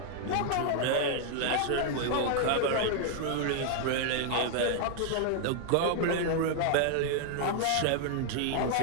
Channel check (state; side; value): different; both; correlation 0.00